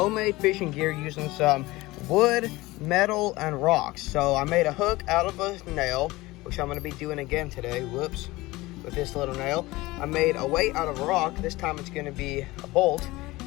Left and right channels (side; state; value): right; quieter; 20.1 dB